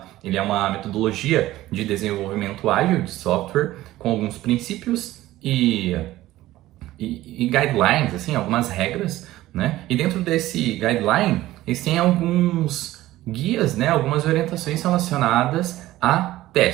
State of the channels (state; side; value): quieter; left; 15.9 dB